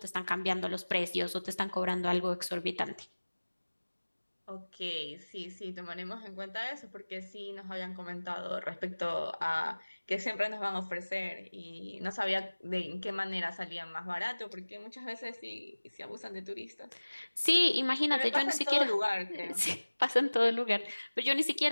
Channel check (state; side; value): inverted; both; correlation -1.00